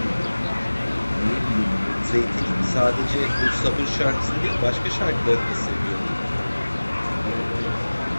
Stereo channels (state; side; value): inverted; both; correlation -1.00